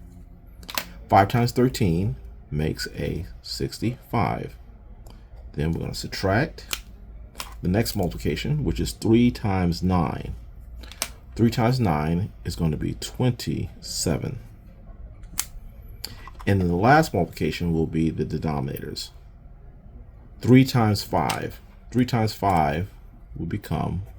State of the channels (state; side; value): identical; both; correlation 1.00